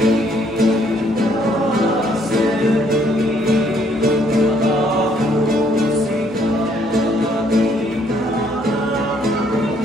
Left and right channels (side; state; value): both; normal; correlation 0.66